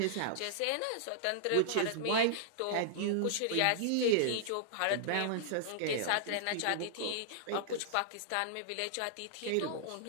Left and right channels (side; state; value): both; different; correlation -0.01